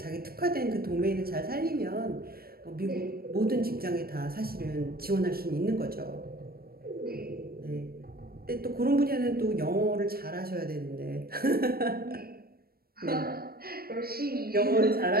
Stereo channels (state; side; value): late; left; 0.44 ms